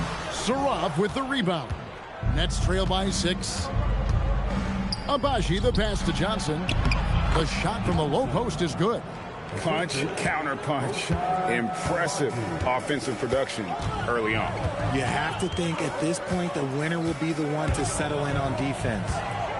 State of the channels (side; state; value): both; identical; correlation 1.00